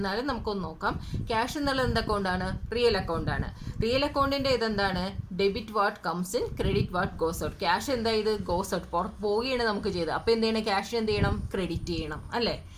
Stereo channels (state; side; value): identical; both; correlation 1.00